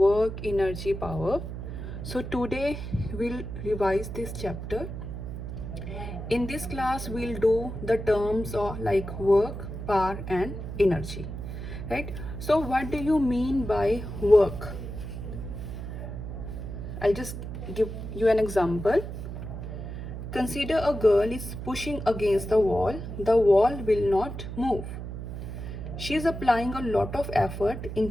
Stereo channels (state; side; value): noise; right; hum, 7 dB below the sound